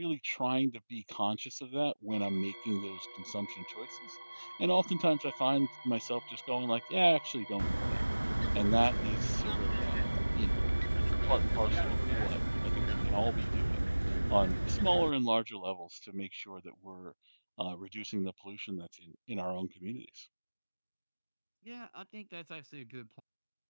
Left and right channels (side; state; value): both; inverted; correlation -1.00